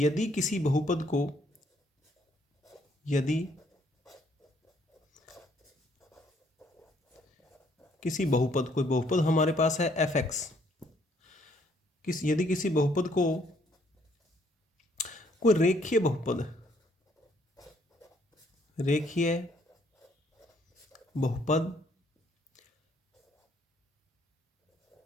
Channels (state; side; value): normal; both; correlation 0.66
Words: यदि किसी बहुपद को कोई बहुपद हमारे पास है fx, यदि किसी बहुपद को कोई रेखीय बहुपद